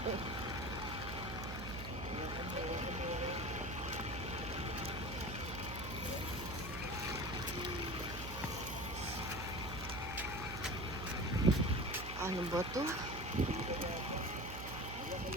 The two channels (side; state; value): right; noise; hum, 8 dB below the sound